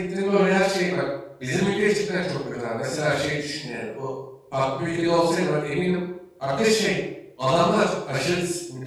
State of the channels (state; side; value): identical; both; correlation 1.00